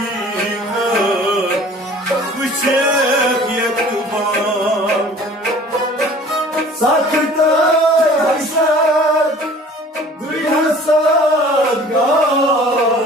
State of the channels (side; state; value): both; normal; correlation 0.48